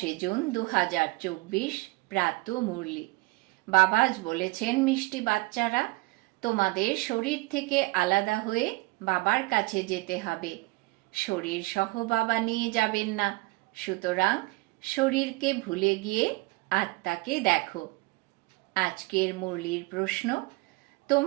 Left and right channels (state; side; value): quieter; left; 24.1 dB